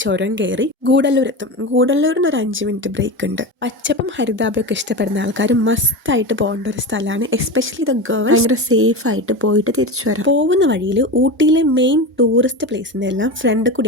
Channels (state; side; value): normal; both; correlation 0.23